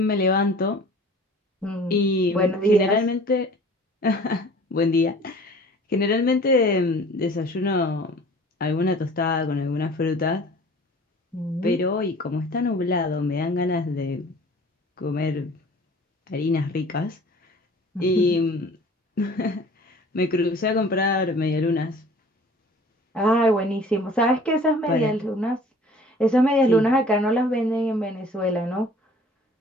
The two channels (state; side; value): normal; both; correlation 0.48